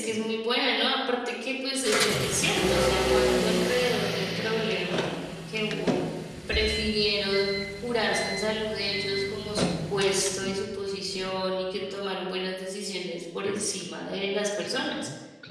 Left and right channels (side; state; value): both; identical; correlation 1.00